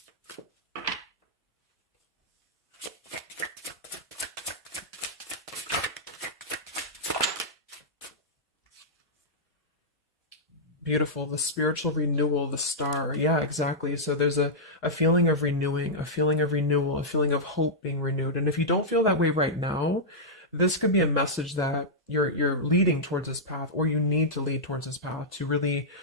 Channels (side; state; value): both; normal; correlation -0.10